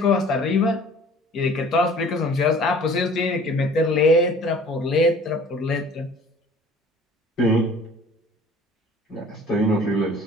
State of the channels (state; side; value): normal; both; correlation 0.49